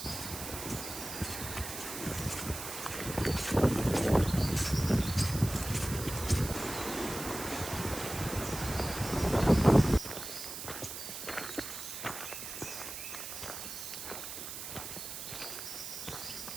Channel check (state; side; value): noise; right; hiss, 8 dB below the sound